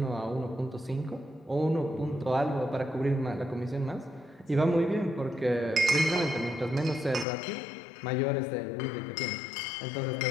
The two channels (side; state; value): right; drops out; at 7.2 s